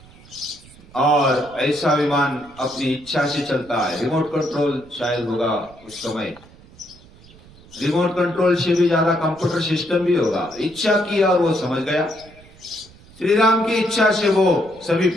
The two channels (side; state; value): right; noise; rumble, 24 dB below the sound